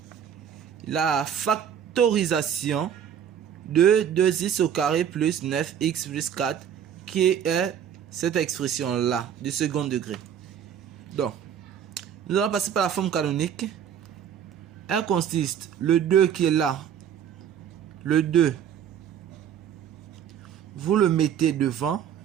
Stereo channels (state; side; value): quieter; left; 8.8 dB